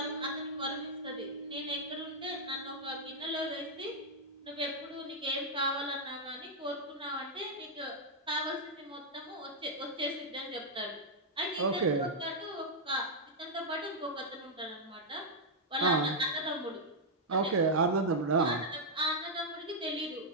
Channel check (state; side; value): normal; both; correlation -0.04